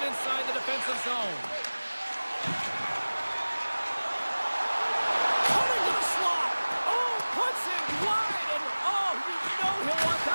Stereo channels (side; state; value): both; inverted; correlation -1.00